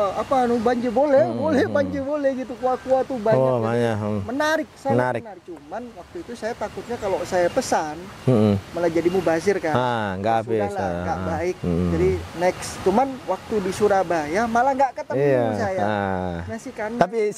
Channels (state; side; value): identical; both; correlation 1.00